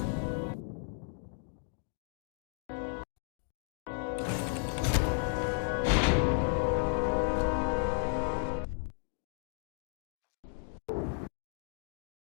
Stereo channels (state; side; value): silent; right; 55 dB below the other